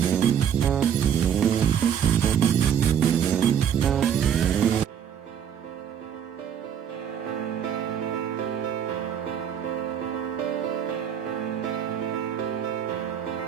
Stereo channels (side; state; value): left; quieter; 8.7 dB